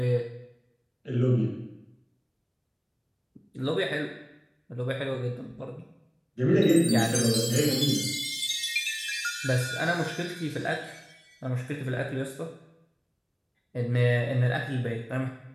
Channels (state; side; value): identical; both; correlation 1.00